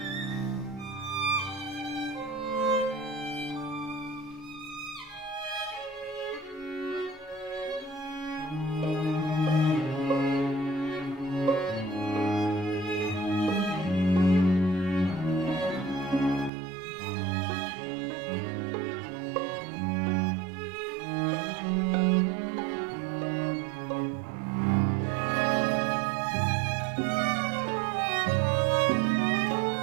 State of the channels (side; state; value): left; drops out; at 16.5 s